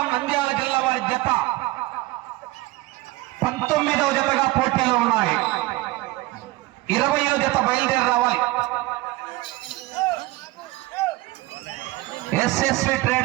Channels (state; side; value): quieter; left; 19.5 dB